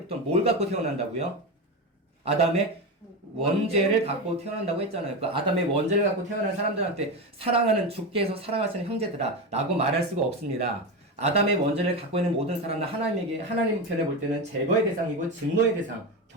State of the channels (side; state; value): both; normal; correlation 0.17